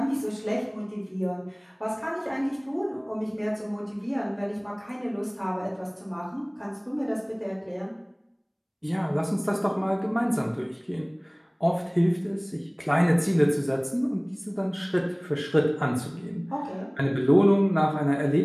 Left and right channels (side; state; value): both; identical; correlation 1.00